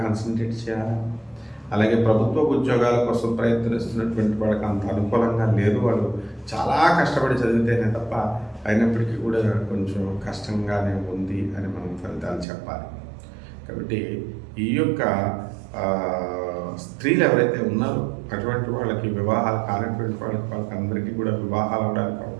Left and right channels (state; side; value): drops out; left; at 12.5 s